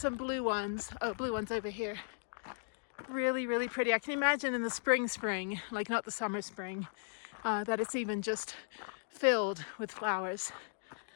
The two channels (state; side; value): silent; right; digital silence